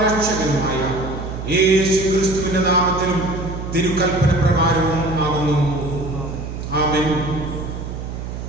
രക്ഷകനുമായ യേശുക്രിസ്തുവിന്റെ നാമത്തിലും തിരുക്കൽപ്പന പ്രകാരവും ആകുന്നു. ആമേൻ.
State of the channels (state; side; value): noise; right; hum, 7 dB below the sound